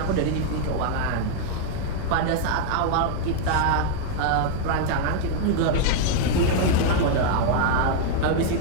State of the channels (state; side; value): different; both; correlation 0.00